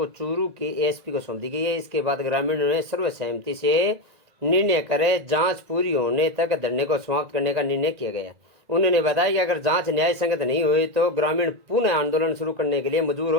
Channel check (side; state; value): left; late; 1.8 ms